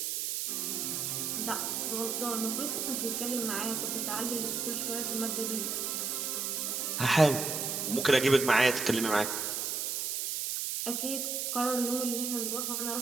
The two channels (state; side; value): noise; right; hiss, 1 dB below the sound